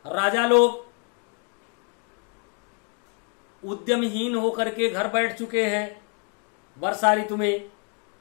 राजा लोग उद्यमहीन होकर के घर बैठ चुके हैं वर्षा ऋतु में,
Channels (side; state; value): right; quieter; 38.5 dB